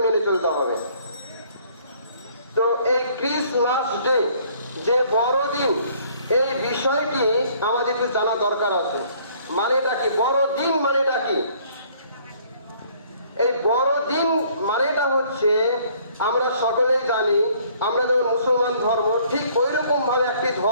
মেনে চলতে হবে। তো এই ক্রিসমাস ডে যে বড়দিন, এই বিষয়টি আমাদের একটু জানা দরকার আছে। মানেটা কি বড়দিন? মানেটা কি? এই বড়দিন মানেটা হচ্ছে, আমরা সকলেই জানি, আমরা যেমন মুসলমান ধর্ম, ঠিক ওই রকম ভাবে একটি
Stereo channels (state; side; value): inverted; both; correlation -0.60